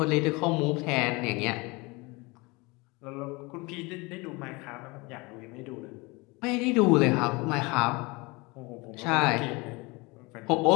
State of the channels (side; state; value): right; quieter; 25.5 dB